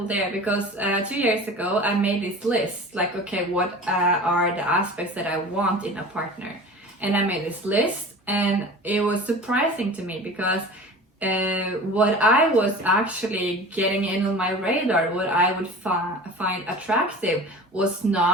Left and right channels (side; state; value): both; normal; correlation 0.37